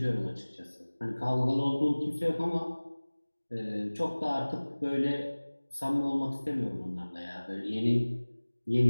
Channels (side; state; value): both; inverted; correlation -1.00